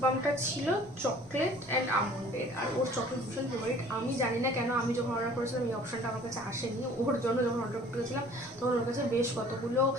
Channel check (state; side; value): normal; both; correlation 0.51